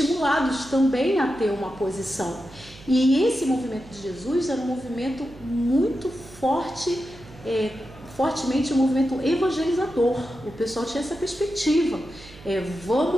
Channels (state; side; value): noise; right; hum, 20 dB below the sound